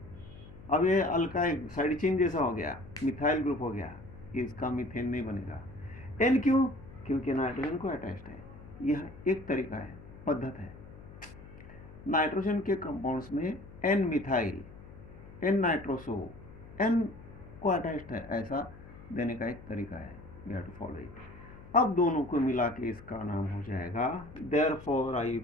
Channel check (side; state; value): left; noise; hum, 17 dB below the sound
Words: अब ये अल्काइल साइड चेन जैसा हो गया, मिथाइल ग्रुप हो गया, इसका मीथेन नहीं बनेगा. एन क्यों? क्योंकि नाइट्रोजन को अटैच्ड है. यह एक तरीका है, पद्धत है. नाइट्रोजन के कंपाउंड्स में N methyl, N nitroso, N को अटैच्ड है, ऐसा देने का एक तरीका है. We have to follow it. अब दोनों को मिला के इसका नाम हो जाएगा, therefore